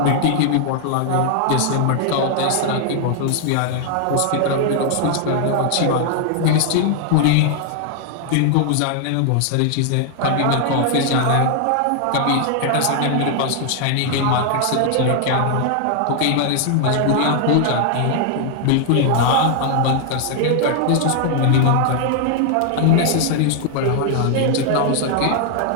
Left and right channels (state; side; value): different; both; correlation 0.00